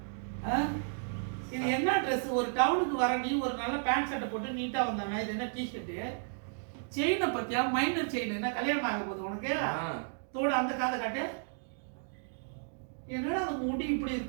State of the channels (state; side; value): silent; left; digital silence